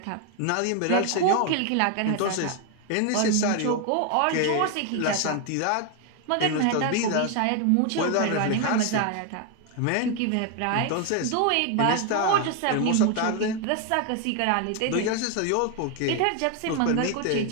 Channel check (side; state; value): both; different; correlation 0.01